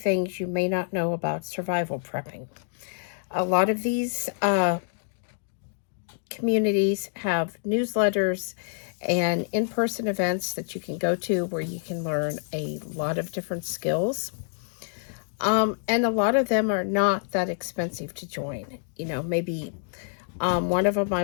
you may not know about survival prepping. A lot of these communities have newsletters and in-person events that you can go to where you can learn a lot of different skills. And a lot of them are not that expensive to join. Maybe one of them I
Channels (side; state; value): right; silent; digital silence